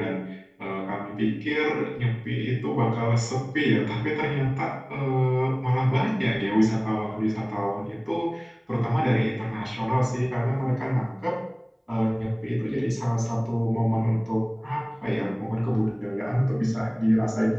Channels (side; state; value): both; identical; correlation 1.00